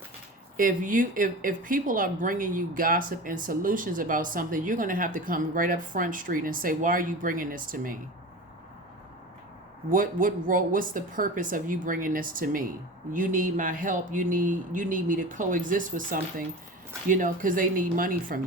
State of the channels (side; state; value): both; normal; correlation 0.32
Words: if people are bringing you gossip and solutions about something, you're going to have to come right up Front Street and say, why are you bringing this to me? What's the purpose of you bringing this to me? You need my help. You need me to coexist with something, because they need money from